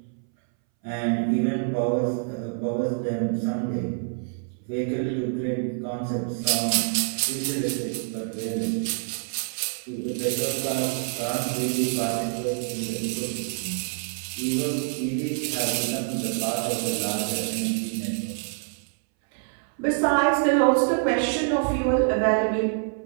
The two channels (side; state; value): left; silent; 60 dB below the other